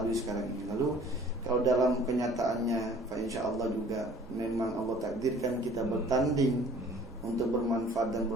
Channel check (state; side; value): normal; both; correlation 0.51